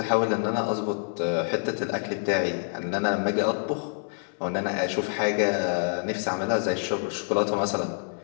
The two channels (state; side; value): silent; right; 60 dB below the other